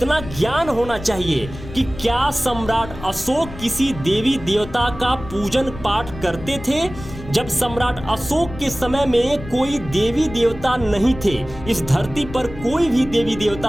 ज्ञान होना चाहिए कि क्या सम्राट अशोक किसी देवी देवता का पूजन पाठ करते थे? जब सम्राट अशोक के समय में कोई देवी देवता नहीं थे, इस धरती पर कोई भी देवी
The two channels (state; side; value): noise; left; rumble, 13 dB below the sound